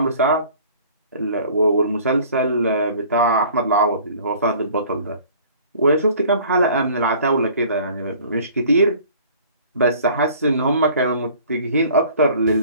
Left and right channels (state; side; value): inverted; both; correlation -0.50